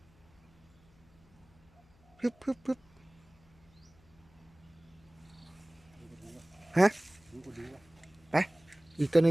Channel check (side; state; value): left; noise; hum, 29 dB below the sound